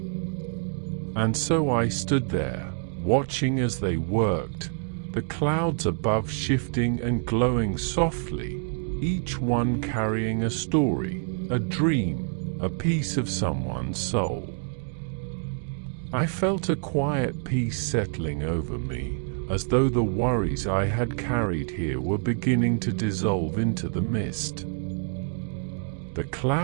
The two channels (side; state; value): left; silent; 57 dB below the other